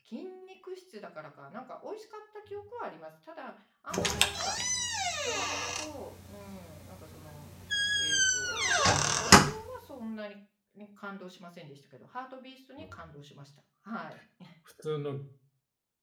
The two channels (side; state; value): both; identical; correlation 1.00